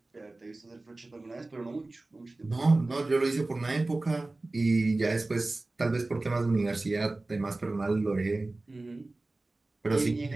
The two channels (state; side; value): quieter; left; 3.0 dB